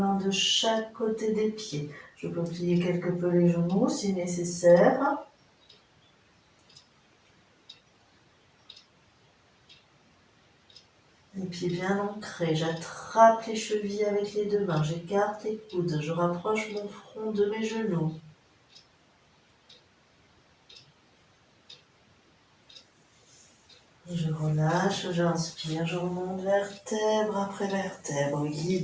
de chaque côté des pieds. Je peux plier quelque peu les genoux si nécessaire. Les pieds bien ancrés, j'attrape les chevilles avec les deux mains, j'écarte les coudes, je rapproche mon front de mes genoux. Et je relâche, j'inspire, je remonte vertèbre après vertèbre,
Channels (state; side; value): identical; both; correlation 1.00